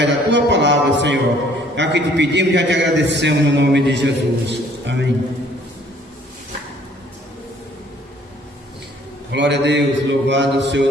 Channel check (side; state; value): both; normal; correlation 0.59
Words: da Tua palavra, Senhor. É o que te pedimos e já te agradecemos no nome de Jesus. Amém. Glória a Deus, louvado seja